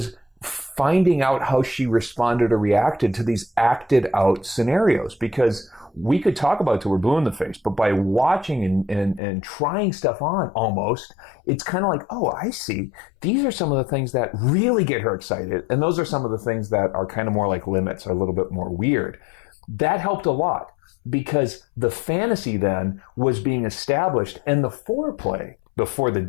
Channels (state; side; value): drops out; right; at 9.2 s